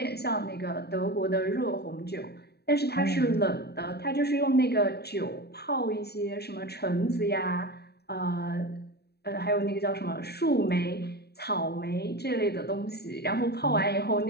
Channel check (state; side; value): late; right; 0.47 ms